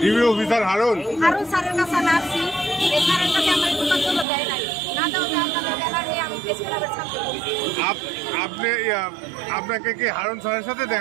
ডিবি অফিসার হারুন স্যারের কাছে আমি আসছি। এই স্যারের কাছে আমার কোনো জন্য দেয় নাই, না দেওয়া আপনাদের ব্যানার নিয়ে আমি প্রেস ক্লাবের ছাত্র। আপনি আপনাকে কি হারুন স্যারের সাথে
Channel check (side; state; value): left; drops out; at 4.2 s